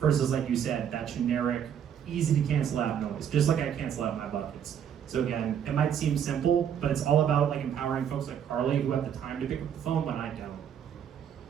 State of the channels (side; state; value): left; quieter; 8.7 dB